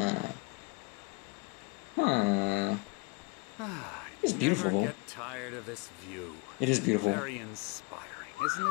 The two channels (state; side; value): quieter; right; 28.6 dB